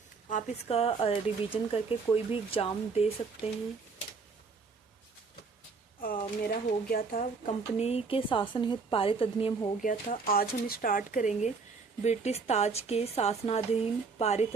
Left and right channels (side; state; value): left; quieter; 4.7 dB